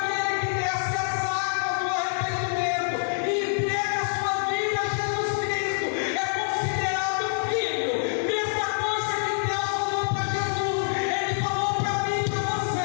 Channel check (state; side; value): silent; right; 61 dB below the other